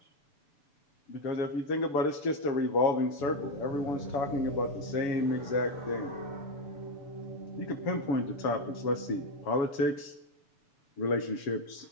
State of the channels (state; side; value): late; right; 6.9 ms